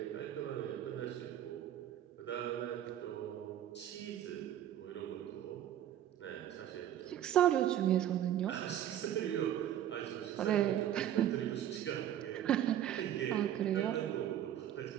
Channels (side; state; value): left; quieter; 11.2 dB